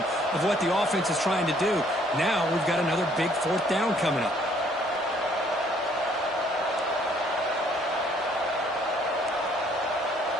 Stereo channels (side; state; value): both; normal; correlation 0.63